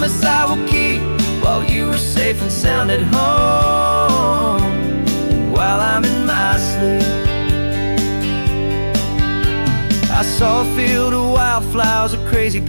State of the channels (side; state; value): both; inverted; correlation -1.00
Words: I will keep, while you are safe and sound at home, and while I'm in my sleep. I saw a field of wildflowers, a crazy